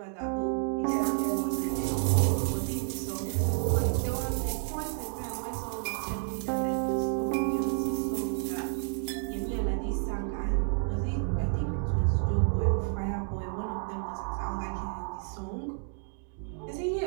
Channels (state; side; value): silent; left; 58 dB below the other